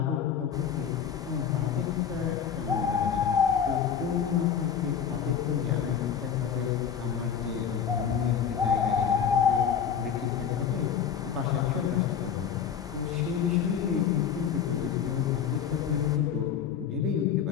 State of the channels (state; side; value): quieter; right; 7.9 dB